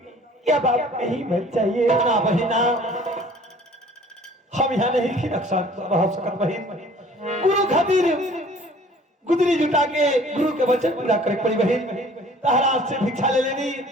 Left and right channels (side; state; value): both; normal; correlation 0.51